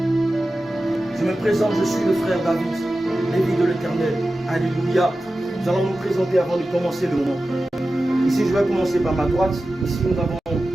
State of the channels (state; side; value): normal; both; correlation 0.94